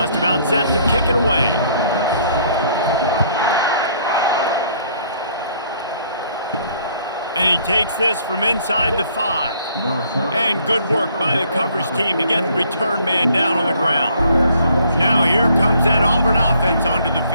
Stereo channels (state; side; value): inverted; both; correlation -0.62